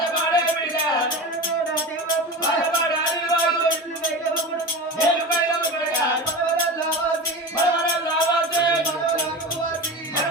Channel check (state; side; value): normal; both; correlation 0.28